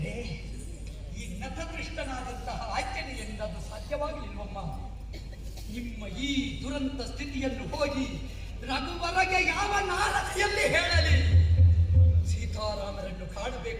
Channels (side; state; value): both; identical; correlation 1.00